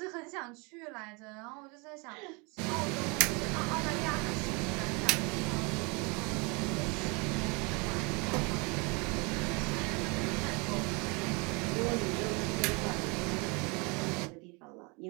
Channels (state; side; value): quieter; left; 29.7 dB